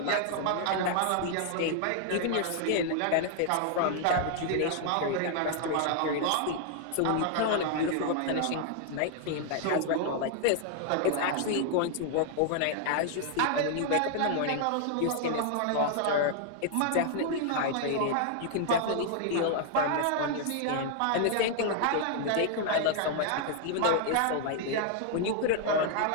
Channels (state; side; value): different; both; correlation 0.00